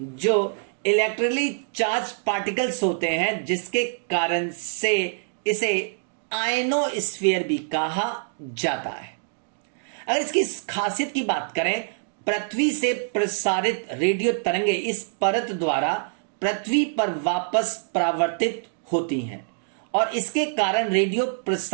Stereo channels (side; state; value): left; silent; digital silence